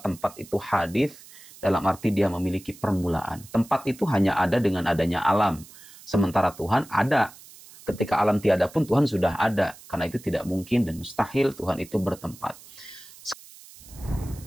itu hadits dalam arti dia memiliki permulaan. Tempat itu hanya ada dengan adanya alam. Sementara Tuhan ada. Ketika alam tiada pun Tuhan sudah ada. Karena itu tidak mungkin dan mustahil Tuhan itu bertempat.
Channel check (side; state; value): right; noise; hiss, 20 dB below the sound